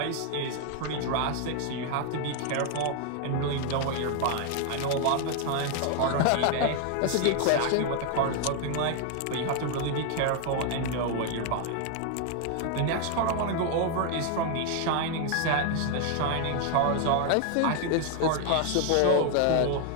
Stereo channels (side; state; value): both; different; correlation 0.00